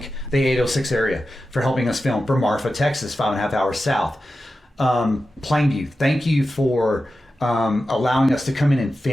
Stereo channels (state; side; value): normal; both; correlation 0.92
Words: the 806 area for helping us film, for Marfa, Texas, 5.5 hours south. Plainview, thank you for allowing us to come in and